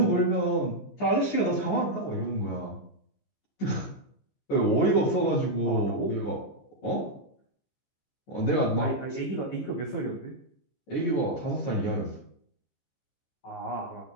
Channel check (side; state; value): right; late; 15 ms